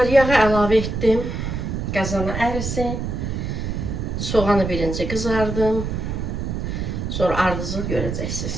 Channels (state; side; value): noise; right; rumble, 3 dB below the sound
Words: Xanımlar, yağı əlavə etdim. Qazana ərisin. Soğanı birinci qızardım. Sonra ardıcıl görəcəksiniz.